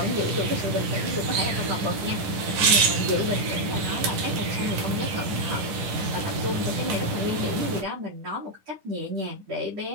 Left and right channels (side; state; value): left; late; 10 ms